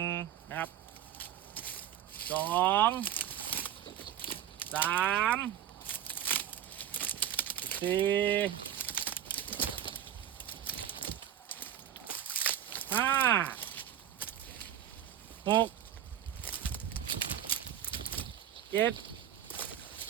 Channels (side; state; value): left; quieter; 10.3 dB